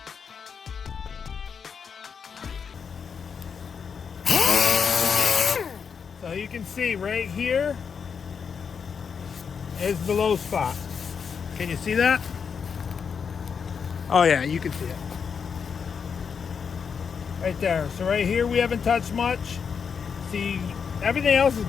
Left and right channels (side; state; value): right; quieter; 6.4 dB